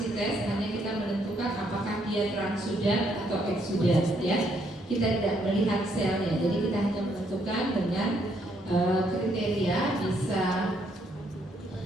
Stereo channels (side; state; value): both; normal; correlation 0.72